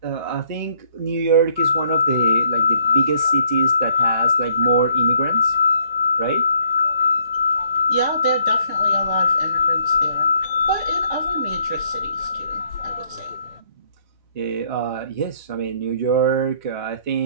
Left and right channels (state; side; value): inverted; both; correlation -0.67